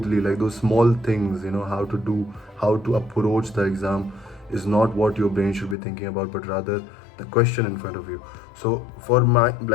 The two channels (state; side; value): drops out; right; at 5.8 s